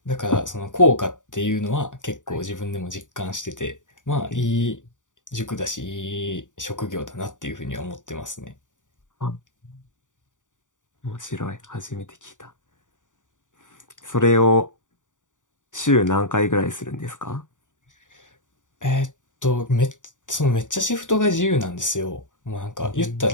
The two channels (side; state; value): right; late; 0.87 ms